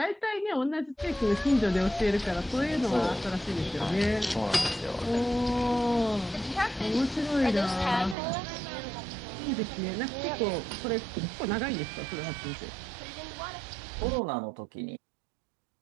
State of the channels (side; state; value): left; drops out; at 8.2 s